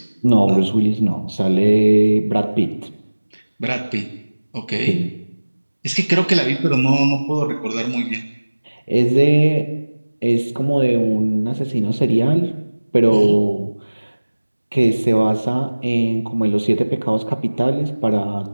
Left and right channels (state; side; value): inverted; both; correlation -1.00